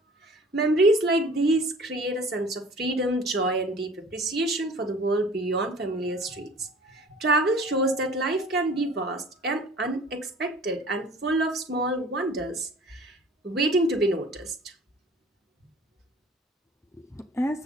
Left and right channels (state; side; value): normal; both; correlation 0.47